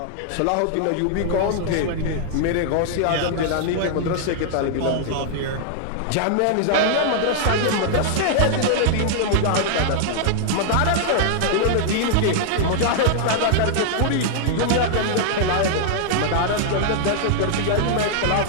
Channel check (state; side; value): different; both; correlation -0.01